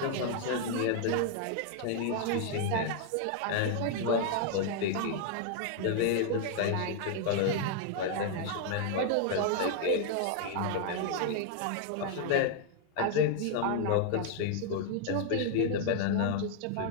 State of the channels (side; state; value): both; different; correlation 0.00